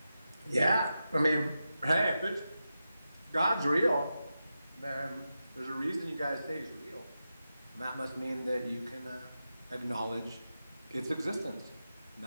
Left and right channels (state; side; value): inverted; both; correlation -0.90